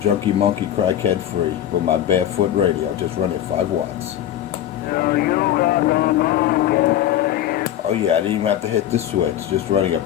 monkey crackhead free with my barefoot radio, just running 5 watts. Oh yeah, I didn't even have to hit the switch, just running a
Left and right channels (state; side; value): quieter; right; 11.6 dB